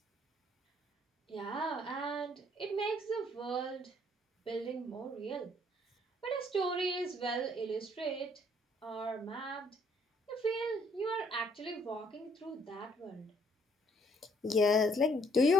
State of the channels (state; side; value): normal; both; correlation 0.65